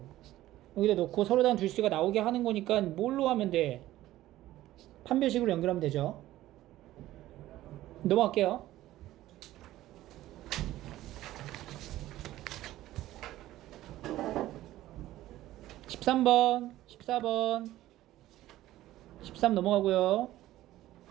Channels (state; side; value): quieter; left; 15.0 dB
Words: 여기다 놓고 서로 다른 두 실수가 나오게 하는 거니까 뭘로 하면 돼? 판별식으로 연결하면 되죠. 넘어갈게요. (13번) (14번) 13 넘어가고요.